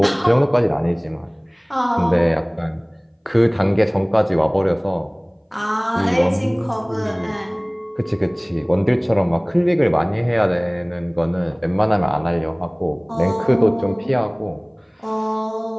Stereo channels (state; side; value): identical; both; correlation 1.00